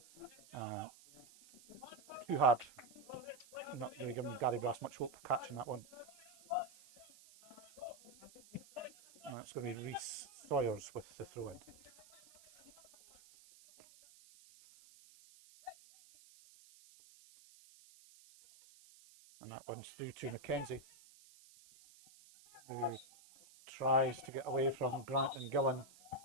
too hard. Not really giving Gary Brass much hope of catching that one. And it's going to be Rhys Sawyers with the throw in. And that one's through to Mackenzie, who tries to get away from Grant and Gillen.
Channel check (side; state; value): right; noise; hiss, 22 dB below the sound